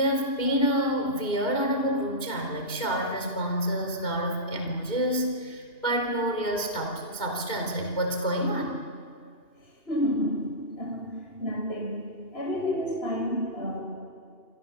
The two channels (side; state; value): right; late; 2.8 ms